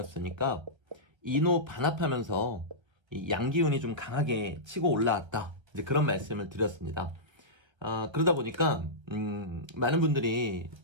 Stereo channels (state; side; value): late; left; 1.3 ms